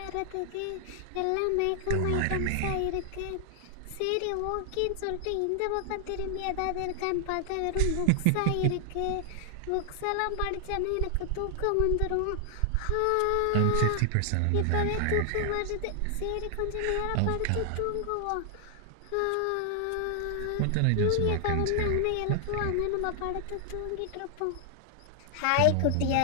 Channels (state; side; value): different; both; correlation 0.00